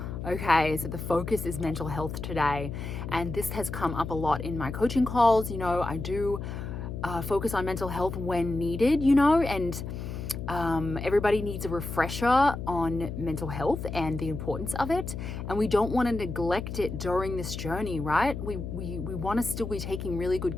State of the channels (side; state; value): left; noise; hum, 7 dB below the sound